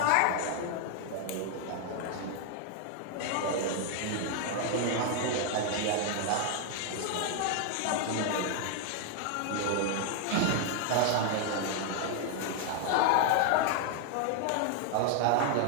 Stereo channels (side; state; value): both; different; correlation 0.00